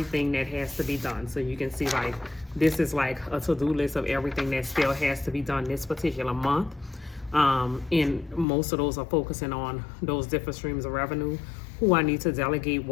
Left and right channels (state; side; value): drops out; right; at 8.5 s